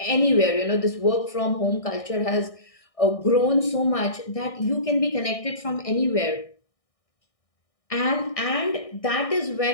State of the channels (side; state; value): right; late; 1.6 ms